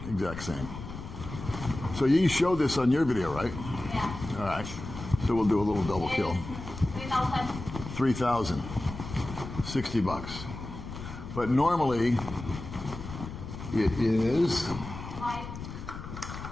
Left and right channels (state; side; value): noise; left; rumble, 10 dB below the sound